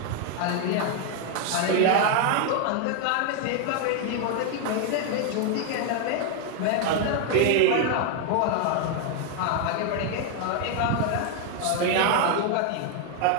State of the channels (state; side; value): different; both; correlation 0.00